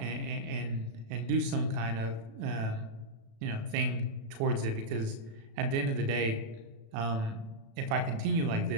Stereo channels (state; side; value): late; left; 36 ms